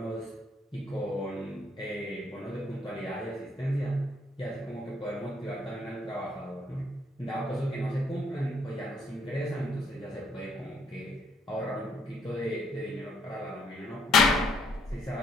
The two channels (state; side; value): normal; both; correlation 0.68